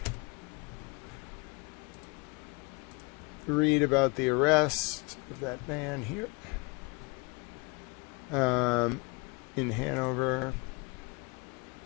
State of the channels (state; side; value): quieter; right; 28.6 dB